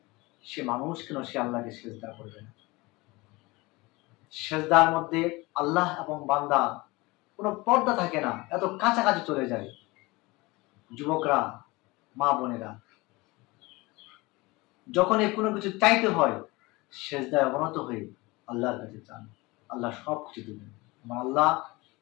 সে মানুষ কেন সে আল্লাহকে সিজদা করবে না? সিজদার মধ্যে আল্লাহ এবং বান্দা কোনো পর্দা থাকে না, এত কাছাকাছি চলে যায়। যুবকরা, মা বোনেরা, যখন কোনো কিছু চাইতে হয়, সিজদায় অবনত হয়ে আল্লাহর কাছে চান, আল্লাহ সব কিছু দেবেন। আমার আল্লাহ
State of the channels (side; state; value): right; quieter; 22.9 dB